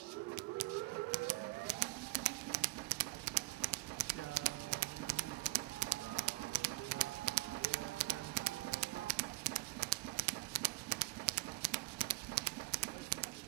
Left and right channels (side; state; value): left; quieter; 24.2 dB